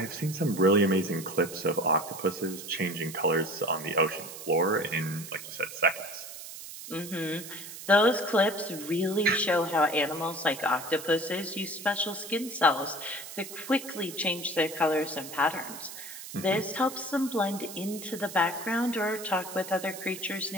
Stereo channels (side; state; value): right; noise; hiss, 12 dB below the sound